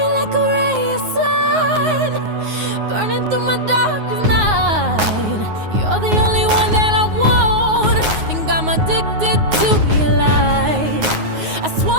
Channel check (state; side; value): late; left; 9.5 ms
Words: like a ray of sun, burning through my darkest night. You're the only one that I want. Think I'm addicted to your light. I